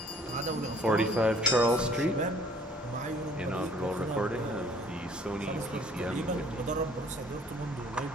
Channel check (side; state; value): both; normal; correlation 0.57